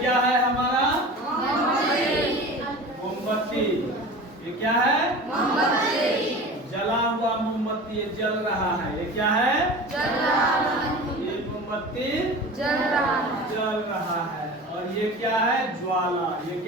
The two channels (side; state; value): both; normal; correlation 0.35